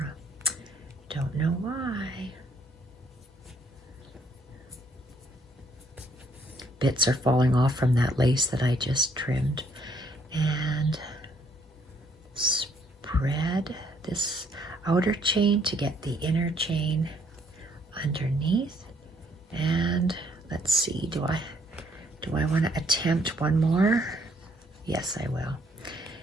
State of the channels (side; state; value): both; normal; correlation 0.67